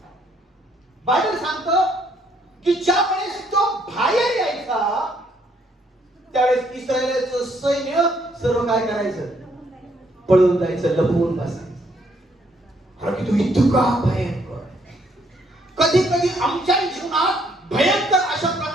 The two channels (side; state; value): both; normal; correlation 0.69